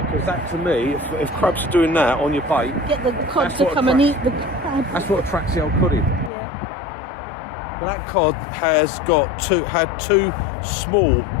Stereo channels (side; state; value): right; drops out; at 6.3 s